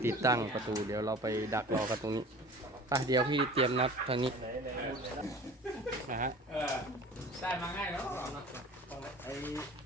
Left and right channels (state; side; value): normal; both; correlation 0.42